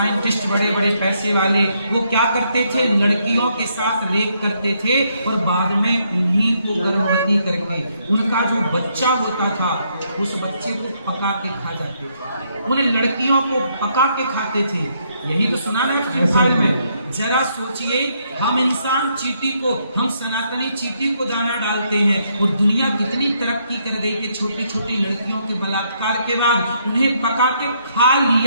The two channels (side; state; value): both; inverted; correlation -0.74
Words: बड़े बड़े पैसे वाले, वो क्या करते थे? लड़कियों के साथ रेप करते थे और बाद में उन्हीं को गर्भवती करके उनका जो बच्चा होता था उस बच्चे को पका के खा जाते थे। उन लड़कियों को पका के खाते थे। यही तो सुना ना एप्स्टीन फाइल में। जरा सोचिए, हम इंसान चींटी को, हम सनातनी चींटी को दाना डालते हैं और दुनिया कितनी तरक्की कर गई कि छोटी छोटी लड़कियों के बलात्कार के बाद उन्हें पका के खा